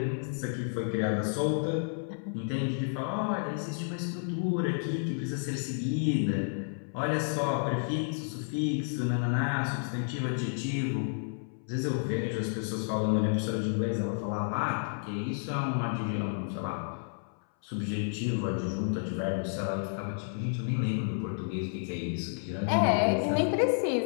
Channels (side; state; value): right; silent; 57 dB below the other